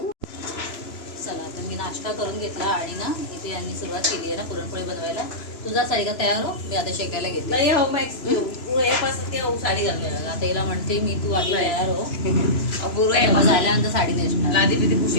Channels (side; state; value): right; late; 3.0 ms